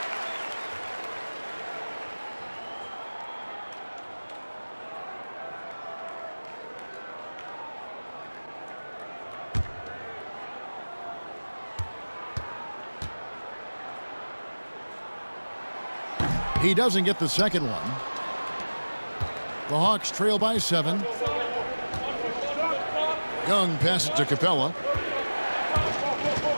He doesn't get the second one. The Hawks trail by 7. Young passes to Capella.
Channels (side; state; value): both; inverted; correlation -1.00